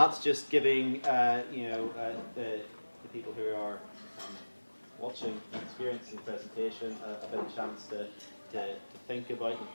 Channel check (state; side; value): inverted; both; correlation -1.00